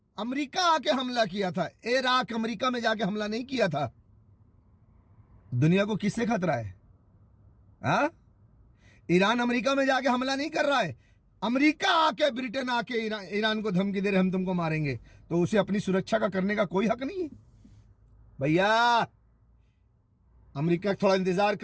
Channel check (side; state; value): both; identical; correlation 1.00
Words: अमेरिका आके हमला किया था, इराक अमेरिका में जाके हमला नहीं किया था। दुनिया को किससे खतरा है? हाँ, ईरान अमेरिका में जाके हमला नहीं कर रहा है, अमेरिका आके, ब्रिटेन आके ईरान को धमकी दे रहे हम तुमको मारेंगे, तो उसे अपनी सुरक्षा का करने का कोई हक नहीं है। भैया अमेरिका थोड़ा इंतजार